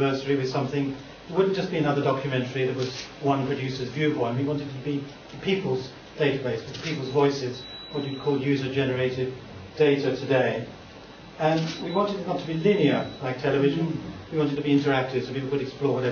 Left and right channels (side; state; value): both; identical; correlation 1.00